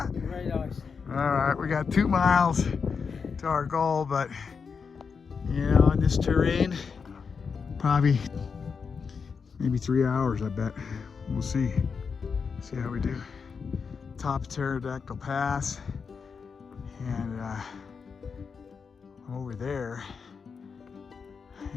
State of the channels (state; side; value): quieter; right; 5.7 dB